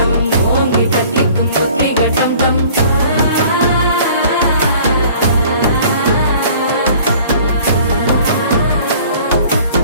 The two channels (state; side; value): inverted; both; correlation -0.51